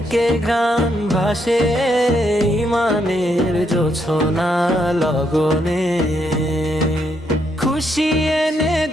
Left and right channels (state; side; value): normal; both; correlation 0.76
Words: ঘ্রাণ ভাসে। ইমানের জোছনা লগনে খুশি এনে